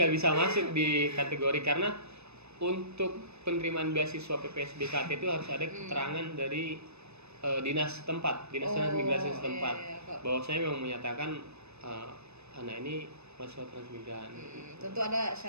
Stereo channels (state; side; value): late; left; 0.80 ms